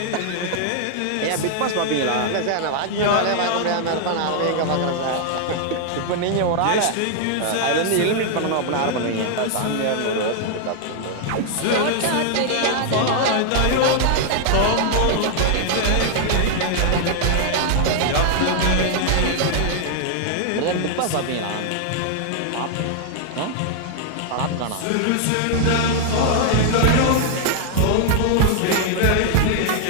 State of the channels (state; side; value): different; both; correlation 0.00